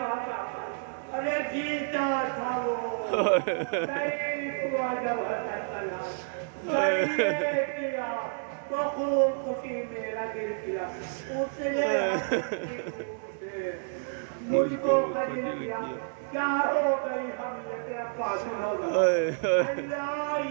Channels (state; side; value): silent; left; digital silence